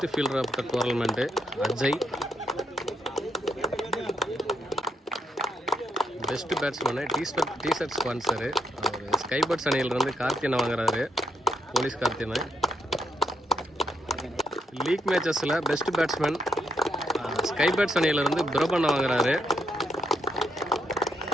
fielder of the tournament Ajay. Best batsman t shirt sponsor அவர் ஸ்கைபர்ட்ஸ் அணியிலிருந்து கார்த்தியனை வாங்குறாரு. போலீஸ் கார்த்தியனை. லீக் மேட்சஸில் பெஸ்ட் பேட்ஸ்மேன் ஸ்கைபர்ட்ஸ் அணியிலிருந்து பிரபண்ண வாங்குறாரு.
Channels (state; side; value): normal; both; correlation 0.76